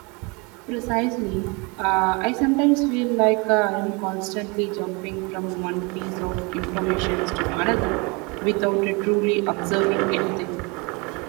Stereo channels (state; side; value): quieter; left; 29.3 dB